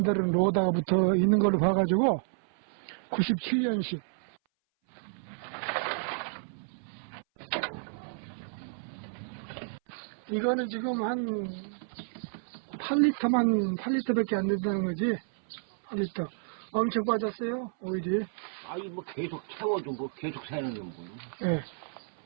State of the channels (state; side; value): silent; left; 57 dB below the other